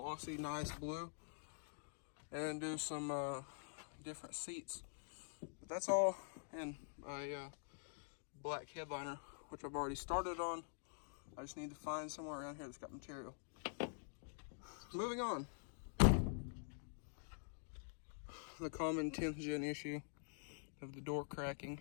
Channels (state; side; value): silent; right; digital silence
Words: nice blue. And do some different seats. But that's all in a black headliner, which I've already started on. I just need to find somewhere around here that's got material. Moving on. The common 10th gen issue of the door cracking.